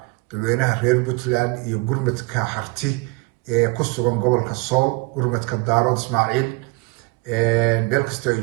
dadweynaha reer Puntland iyo gurmadka harti ee ku sugan gobolka Sool gurmadka Daarood Ismaaciil meel kasta ay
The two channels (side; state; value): left; quieter; 25.1 dB